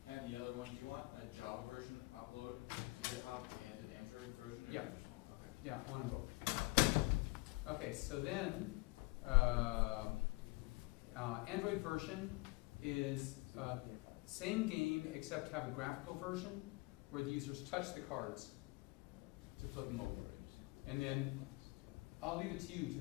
and the other one, do you want a Java version upload to GitHub and an Android version? Or Yeah. you just want, okay. Yeah, one and both. Okay, so then Android version is same game except have a graphical version where the users touch the cards to flip them over, and then I'll leave it to you to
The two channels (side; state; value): right; quieter; 24.5 dB